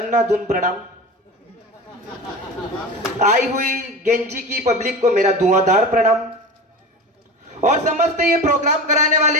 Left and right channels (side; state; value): both; normal; correlation 0.31